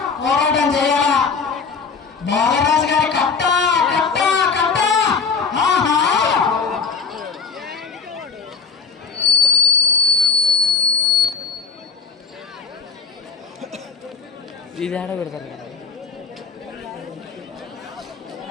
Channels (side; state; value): right; quieter; 5.4 dB